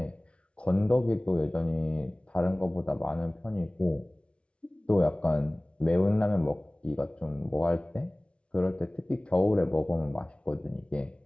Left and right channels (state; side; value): late; right; 0.059 ms